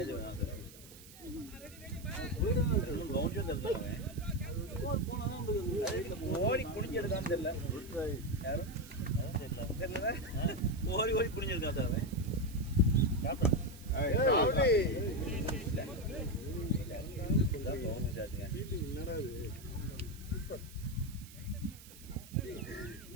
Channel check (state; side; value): noise; right; hiss, 19 dB below the sound